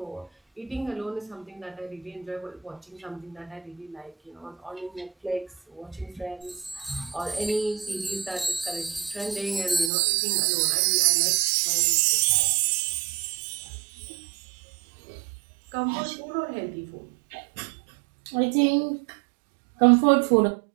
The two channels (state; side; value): drops out; left; at 9.9 s